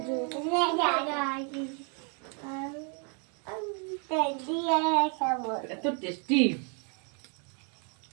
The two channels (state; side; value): quieter; left; 39.1 dB